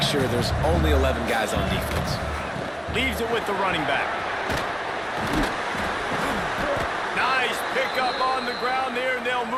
sure there's only 11 guys on defense. Leaves it with the running back. Nice pickup on the ground there, and they'll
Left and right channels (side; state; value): both; identical; correlation 1.00